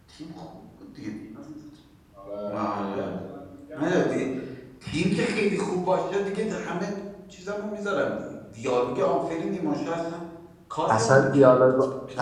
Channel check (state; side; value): identical; both; correlation 1.00